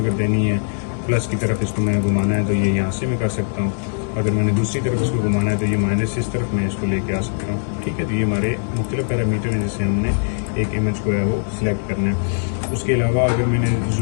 देनी है प्लस की तरफ इसको मैंने घुमाना है तो ये यहाँ से मैं कर सकता हूँ। अगर मैंने दूसरी तरफ इसको घुमाना है तो ये माइनस इस तरफ मैं इसको लेके आ सकता हूँ। ठीक है, तो ये हमारे मुख्तलिफ पैरामीटर हैं जिससे हमने एक इमेज को है वो सिलेक्ट करना है। उसके अलावा अगर मैंने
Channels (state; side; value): silent; right; 65 dB below the other